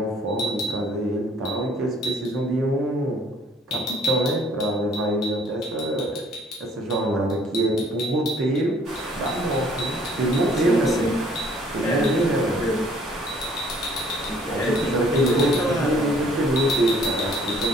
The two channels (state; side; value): normal; both; correlation 0.59